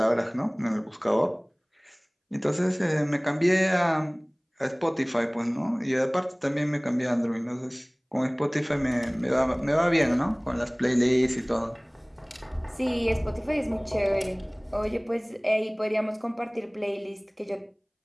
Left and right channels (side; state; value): both; identical; correlation 1.00